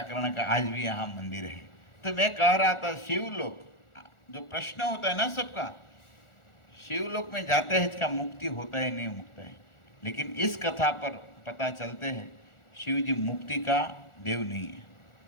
कर्ण का आज भी यहाँ मंदिर है। तो मैं कह रहा था शिवलोक जो प्रश्न होता है ना सबका, शिवलोक में जाते हैं इसका मुक्ति होता है नहीं होता है, लेकिन इस कथा पर पता चलते हैं शिव जी मुक्ति का देव नहीं है।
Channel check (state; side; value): late; right; 1.4 ms